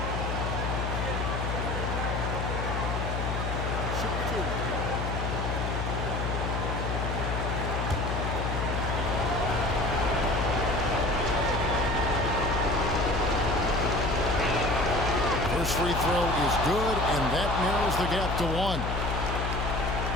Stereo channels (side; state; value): left; noise; hum, 2 dB below the sound